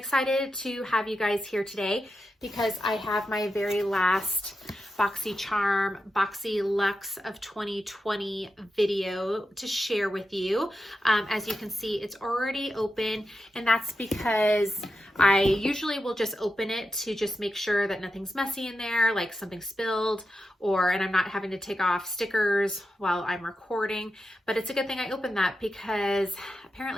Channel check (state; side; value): normal; both; correlation 0.89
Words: to have you guys here today because I have my very last BoxyCharm BoxyLuxe of 2020 video to share with you. As you can see, it's already open, and that's because I usually will just open it to just make sure that nothing's messy in there, like something spilled, and I'm not having to take off stickers while I'm recording. But it's a good thing I opened that because